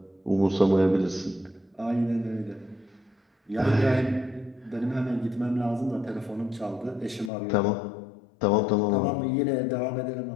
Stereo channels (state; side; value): drops out; right; at 7.3 s